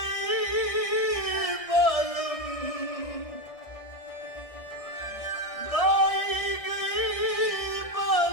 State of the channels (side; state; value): right; late; 1.6 ms